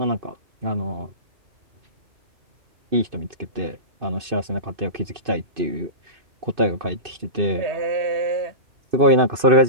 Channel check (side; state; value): left; late; 2.6 ms